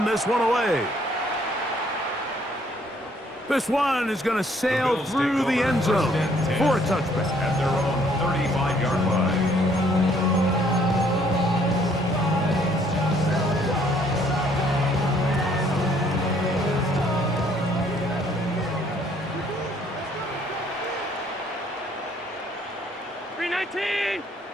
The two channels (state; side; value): normal; both; correlation 0.64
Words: this one away. This one is going to sail through the end zone for a touchback. At their own 35-yard line.